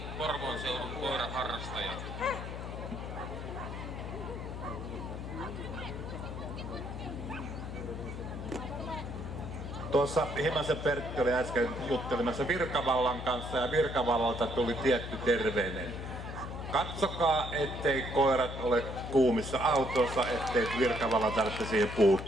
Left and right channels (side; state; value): left; noise; hum, 7 dB below the sound